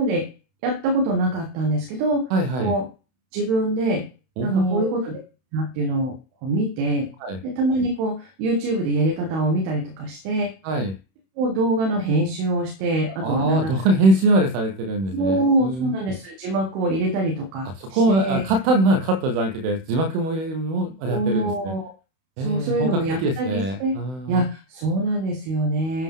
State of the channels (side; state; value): left; late; 31 ms